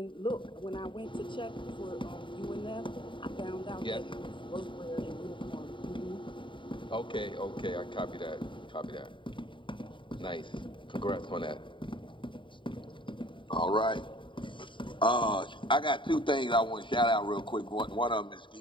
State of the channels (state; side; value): late; right; 0.24 ms